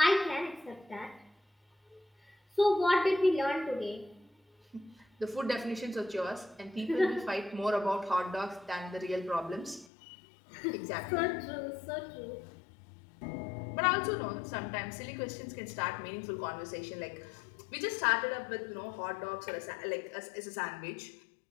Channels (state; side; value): drops out; right; at 9.9 s